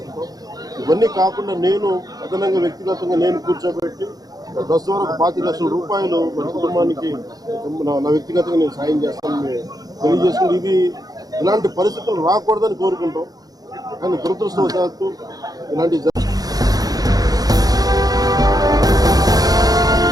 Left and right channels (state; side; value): late; left; 0.18 ms